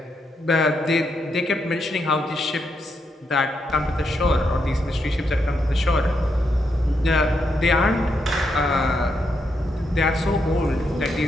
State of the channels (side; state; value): both; normal; correlation 0.81